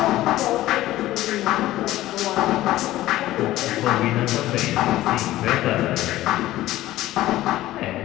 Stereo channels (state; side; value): quieter; right; 15.5 dB